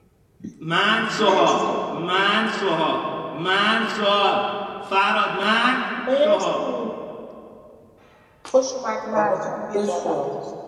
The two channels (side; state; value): both; identical; correlation 1.00